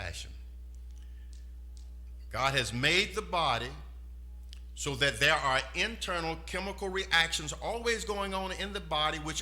God has made the body so that there are internal chemical reactions always going on in the body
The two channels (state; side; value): identical; both; correlation 1.00